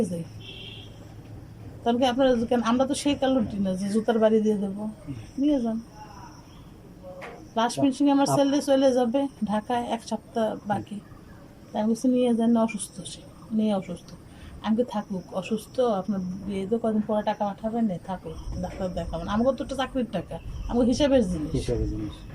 যাই। তাহলে কি আপনারা কেন? আমরা তো সেই কালুটি না যে জুতার বাড়ি দিয়ে দেবো, নিয়ে যান। লাস্ট ফিনিশিং আমার ছেলে চলে যাবে ঢাকায়, 1 সপ্তাহ বাকি। তাই আমি বলছি নিয়ে যান, অসুস্থ সে, মেয়ে অসুস্থ, আমি থাকুক অসুস্থ, আপনার বিয়ে তো কদিন পরে টাকা পাঠাবেন, না থাকুক, ডাক্তার দেখাবেন, আমাকে তো একটা চাকরির টাকা, আমাকে হিসাবের জিনিস।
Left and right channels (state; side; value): identical; both; correlation 1.00